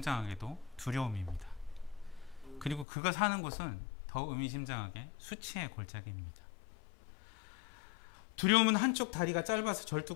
두려움입니다. 그리고 그가 사는 곳은 더 의미심장하게 수치의 골짜기입니다. 두려움은 한쪽 다리가 짧아서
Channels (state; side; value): drops out; right; at 2.9 s